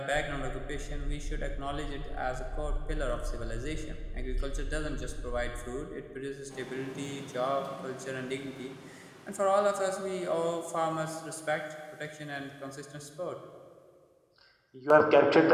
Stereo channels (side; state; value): both; identical; correlation 1.00